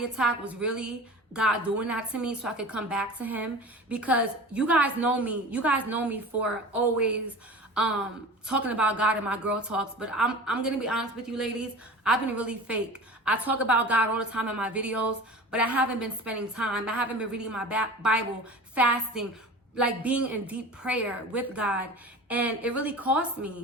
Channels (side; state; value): both; normal; correlation 0.36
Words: attack was really God doing that to me so I could come back to him, because you guys know me for always talking about God in my girl talks. But I'm gonna be honest with you ladies, I've been really fake. I talk about God all the time in my videos, but I haven't been spending time. I haven't been reading my Bible, fasting, like being in deep prayer with God. And it really cost